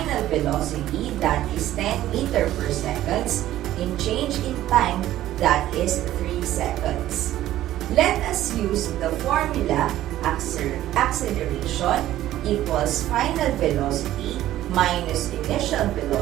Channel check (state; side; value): quieter; left; 13.8 dB